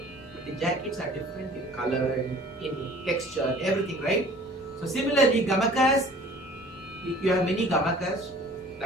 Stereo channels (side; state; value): both; normal; correlation 0.49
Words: but the jackets are different in color and in texture and everything, right? So similarly, gamakas, you have many gamakas